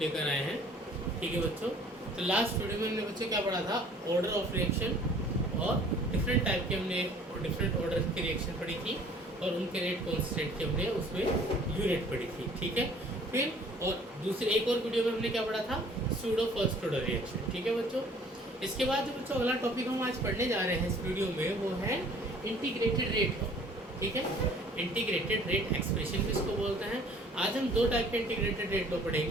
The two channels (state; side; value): normal; both; correlation 0.54